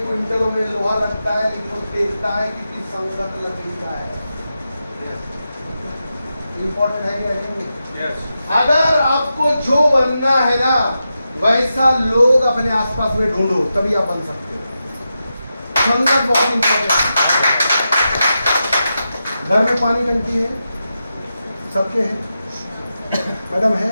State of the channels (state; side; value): inverted; both; correlation -0.89